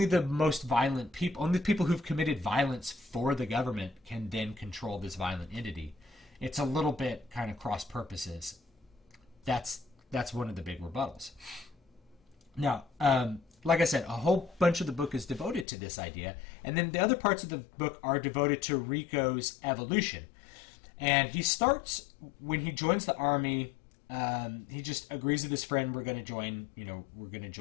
the most violent people, only the people who've committed violence for the government can then control this violent entity. It's a little bit kind of cross purposes. That's one of the big rebuttals. Now, like I said, a whole bunch of the book is devoted to this idea, and then the other parts of the book are devoted to Rico's evolution. And he starts, when he joins the army, he just agrees with his friend, we're going to join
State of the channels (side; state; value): right; drops out; at 15.7 s